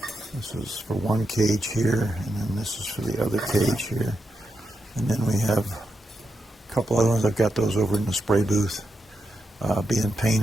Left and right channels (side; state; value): both; normal; correlation 0.86